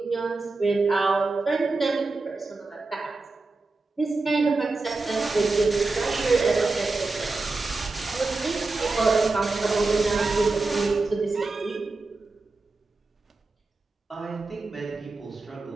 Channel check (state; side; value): quieter; left; 3.6 dB